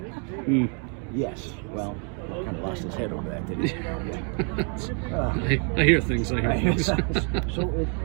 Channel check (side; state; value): left; quieter; 39.9 dB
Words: Mm. Yes. Well, he kind of lost his head over that, didn't he? Yeah. I hear things. I hear things. So it